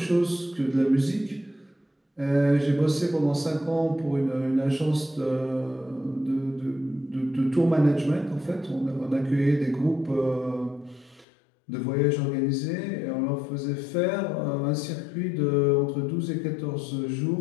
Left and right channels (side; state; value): right; drops out; at 11.2 s